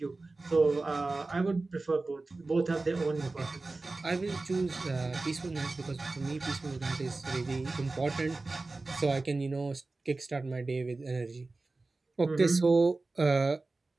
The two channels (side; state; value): left; quieter; 3.4 dB